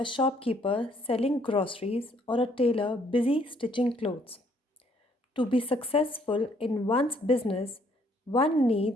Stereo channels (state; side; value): normal; both; correlation 0.66